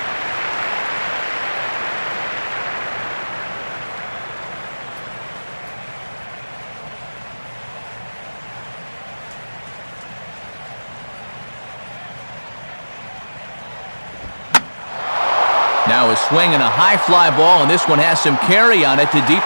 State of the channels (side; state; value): both; inverted; correlation -1.00